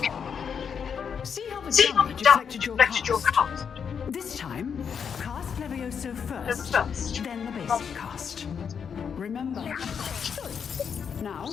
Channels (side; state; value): right; quieter; 7.0 dB